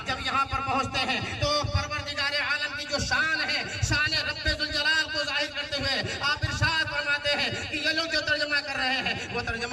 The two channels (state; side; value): identical; both; correlation 1.00